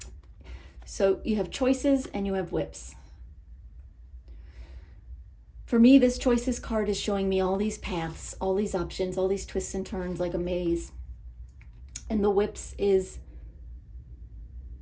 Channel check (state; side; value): identical; both; correlation 1.00